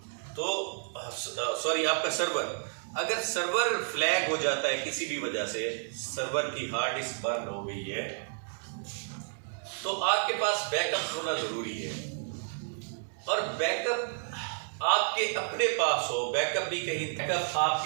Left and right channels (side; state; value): left; silent; digital silence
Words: तो सॉरी, आपका सर्वर, अगर सर्वर फ्लैग हो जाता है किसी भी वजह से, सर्वर की हार्ड डिस्क बर्न हो गई है, तो आपके पास बैकअप होना जरूरी है। और बैकअप आपके अपने पास हो, बैकअप भी कहीं, बैकअप